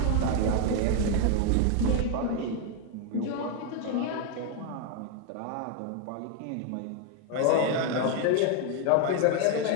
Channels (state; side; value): different; both; correlation 0.01